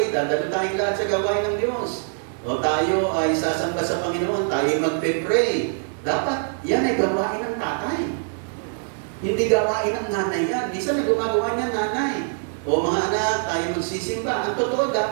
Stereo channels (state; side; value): silent; left; digital silence